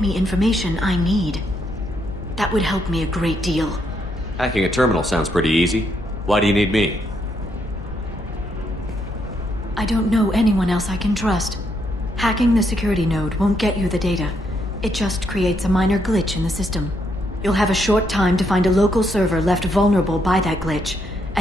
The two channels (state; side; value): normal; both; correlation 0.76